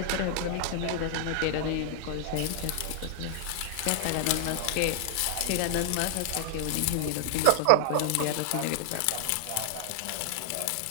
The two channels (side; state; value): both; different; correlation -0.01